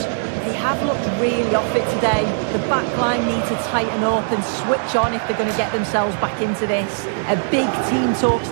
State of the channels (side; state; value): left; silent; digital silence